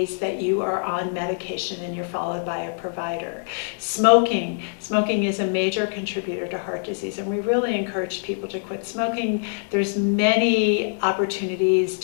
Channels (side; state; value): right; silent; digital silence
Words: that you are on medication and you're followed by a provider. Smoking is a major contributor to heart disease, and we really encourage people to quit smoking. There's many opportunities